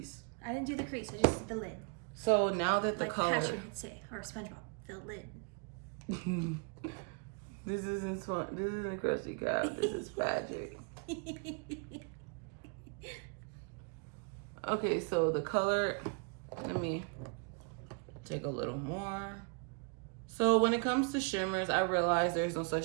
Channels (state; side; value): quieter; left; 37.4 dB